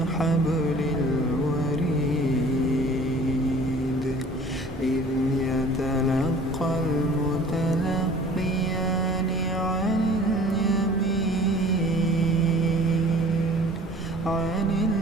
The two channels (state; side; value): normal; both; correlation 0.48